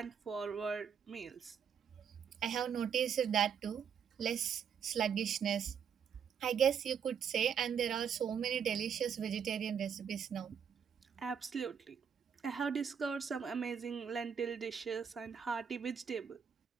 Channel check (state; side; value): quieter; left; 7.4 dB